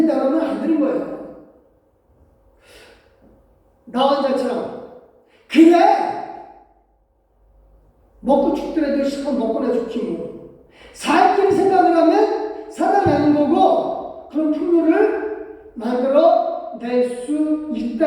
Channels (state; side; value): identical; both; correlation 1.00